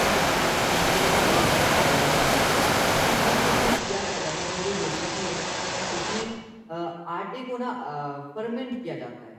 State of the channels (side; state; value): both; identical; correlation 1.00